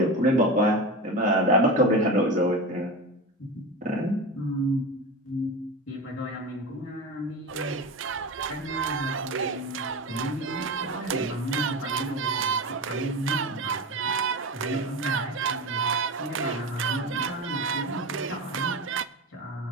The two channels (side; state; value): both; normal; correlation 0.25